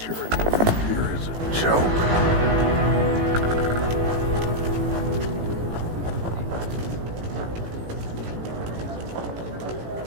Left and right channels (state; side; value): late; left; 18 ms